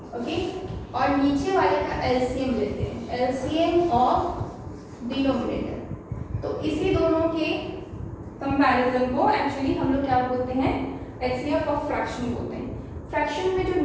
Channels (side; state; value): both; identical; correlation 1.00